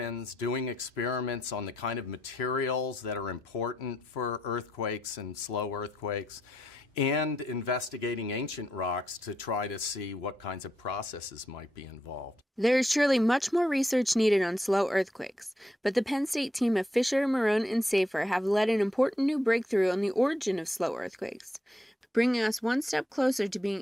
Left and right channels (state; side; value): normal; both; correlation 0.79